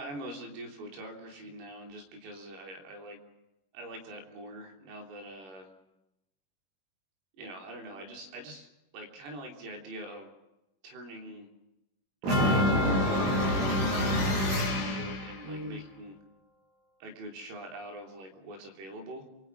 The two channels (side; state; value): left; late; 21 ms